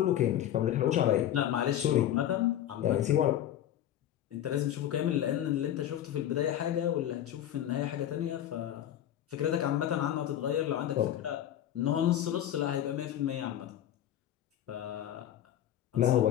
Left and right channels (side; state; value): right; quieter; 11.4 dB